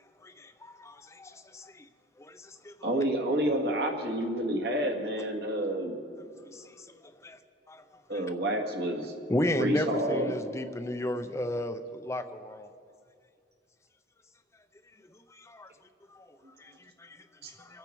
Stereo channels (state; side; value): normal; both; correlation 0.46